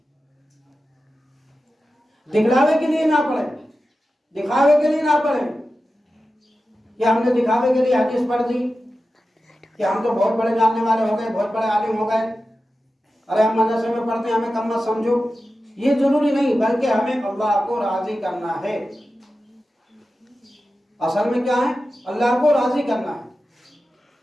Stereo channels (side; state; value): both; normal; correlation 0.93